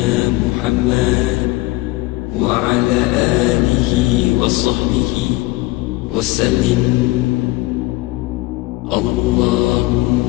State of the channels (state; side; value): quieter; right; 20.4 dB